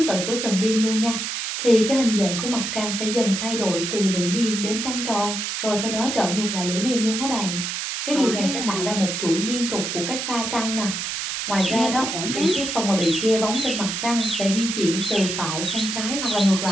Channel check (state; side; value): noise; right; hiss, 3 dB below the sound